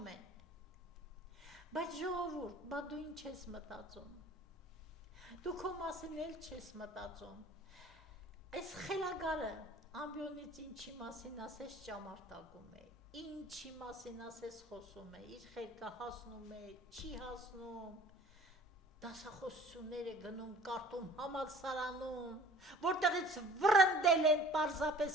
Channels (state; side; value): normal; both; correlation 0.49